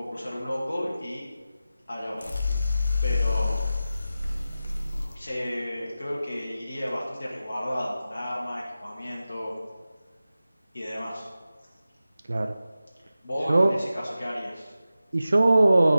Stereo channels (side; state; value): both; inverted; correlation -0.94